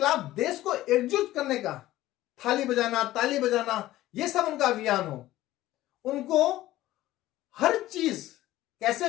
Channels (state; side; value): quieter; right; 15.6 dB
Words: देश को एकजुट करने का थाली बजाना, ताली बजाना, यह सब उनका अभियान हो, उनको हर चीज कैसे